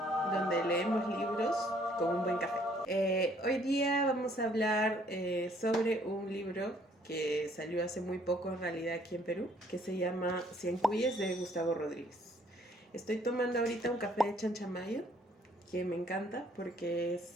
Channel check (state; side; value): normal; both; correlation 0.63